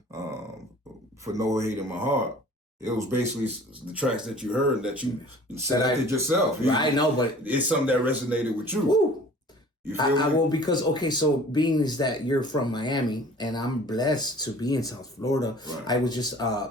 for No Hate in My Heart, It was basically the tracks that you heard that you selected yourself. I know, but it's something that resonated with you. Woo. You feel me? Well, because so being is that you're from Miami and I'm blessed to be in South Florida. Right. I was just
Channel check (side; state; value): both; normal; correlation 0.48